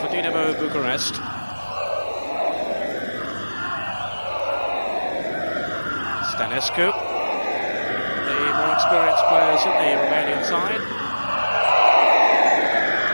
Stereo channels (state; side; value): inverted; both; correlation -1.00